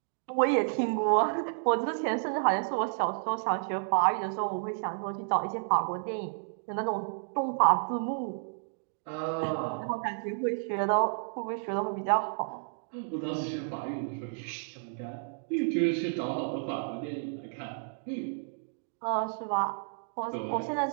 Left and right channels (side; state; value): left; silent; digital silence